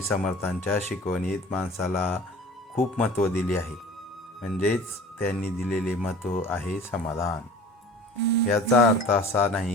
समर्थांच्या शिकवणीत माणसाला खूप महत्त्व दिले आहे. म्हणजेच त्यांनी दिलेले महत्त्व आहे समाधान. याचा अर्थ असा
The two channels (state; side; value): normal; both; correlation 0.43